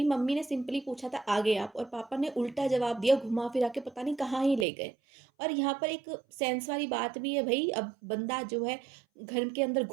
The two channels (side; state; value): left; drops out; at 4.7 s